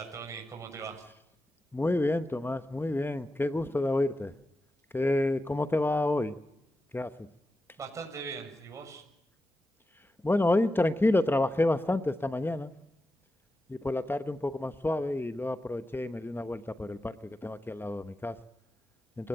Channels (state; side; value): normal; both; correlation 0.91